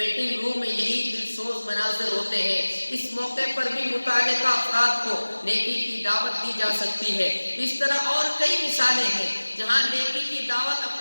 روم میں یہی دلسوز مناظر ہوتے ہیں، اس موقع پر بھی متعلقہ افراد کو نیکی کی دعوت دی جا سکتی ہے۔ اس طرح اور کئی مثالیں ہیں جہاں نیکی کی دعوت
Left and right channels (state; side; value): inverted; both; correlation -1.00